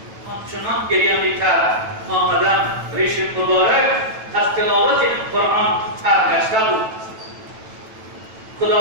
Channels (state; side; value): late; left; 9.1 ms